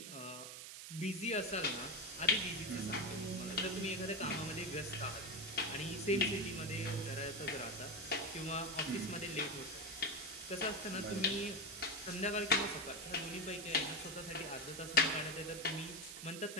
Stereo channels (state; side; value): noise; right; hiss, 9 dB below the sound